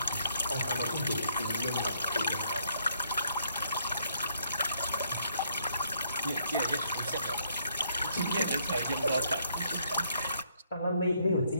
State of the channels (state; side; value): inverted; both; correlation -0.69